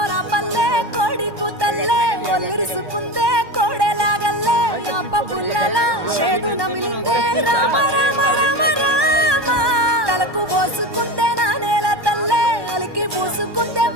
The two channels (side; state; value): left; late; 1.2 ms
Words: పల్లె కోడి కూతల్లే ఒల్లిరుసుకుందే కోడెలాగల్లే అప్ప పుల్లల చేదు నమిలిందే రామ రామ రామ రామ తలకు పోసుకుందే నా నేల తల్లే అలికి పూసుకుందే